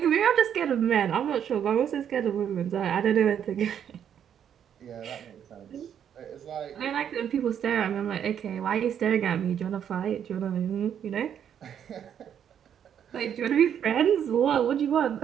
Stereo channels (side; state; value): left; quieter; 8.9 dB